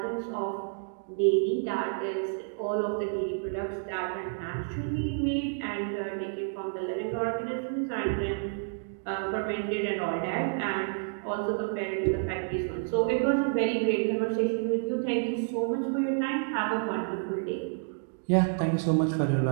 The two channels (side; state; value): left; silent; digital silence